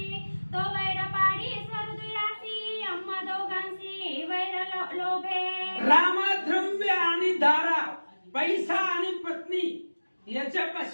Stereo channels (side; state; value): both; inverted; correlation -1.00